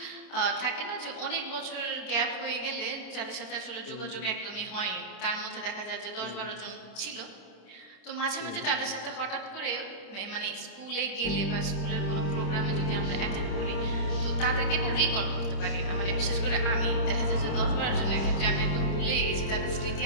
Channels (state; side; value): late; right; 26 ms